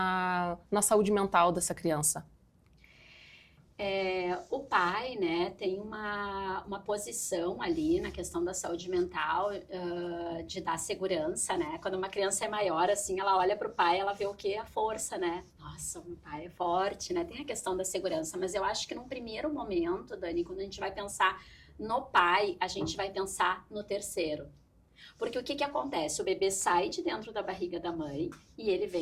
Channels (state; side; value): identical; both; correlation 1.00